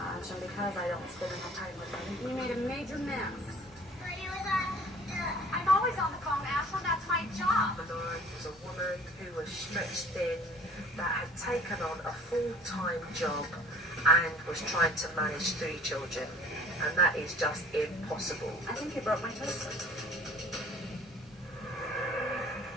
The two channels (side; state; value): both; normal; correlation 0.47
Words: and because I don't spend enough time with them. You made a major mess. I'm always on the phone, Ashley. That's my job. Malora was a woman who was stretched thin, that had taken on a full-time job and was trying to manage 3 children, and that is just impossible. I think you broke my toaster.